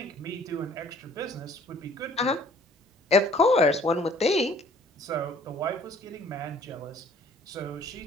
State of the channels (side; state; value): both; normal; correlation 0.55